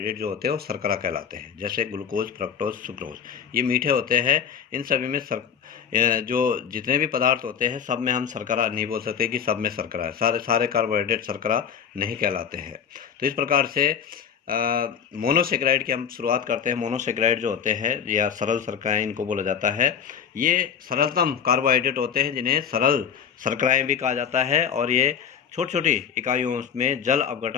जो होते हैं वो शर्करा कहलाते हैं। जैसे ग्लूकोज, फ्रक्टोज, सुक्रोज, ये मीठे होते हैं। इन सभी में जो जितने भी पदार्थ होते हैं सब में हम शर्करा नहीं बोल सकते कि सब में शर्करा है। सारे कार्बोहाइड्रेट शर्करा नहीं कहलाते हैं। तो इस प्रकार से मोनोसेकेराइड की हम शुरुआत करते हैं। मोनोसेकेराइड जो होते हैं या सरल शर्कराएं इनको बोला जाता है। ये सरलतम कार्बोहाइड्रेट होते हैं जिन्हें सरल शर्कराएं भी कहा जाता है, और ये छोटी छोटी इकाइयों में जल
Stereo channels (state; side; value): quieter; right; 7.7 dB